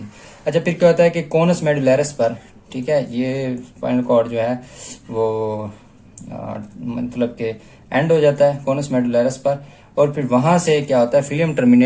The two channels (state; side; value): identical; both; correlation 1.00